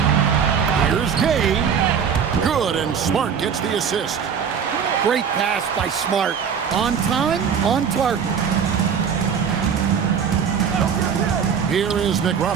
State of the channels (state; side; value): quieter; left; 7.2 dB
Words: Here's Gay. Good, and Smart gets the assist. Great pass by Smart. On time, on target. Here is